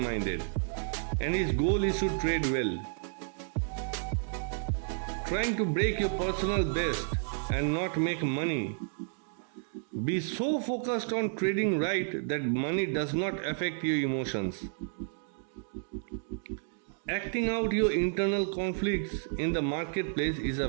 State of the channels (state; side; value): silent; left; digital silence